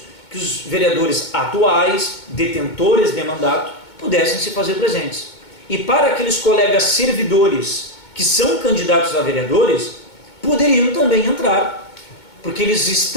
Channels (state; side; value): late; right; 2.2 ms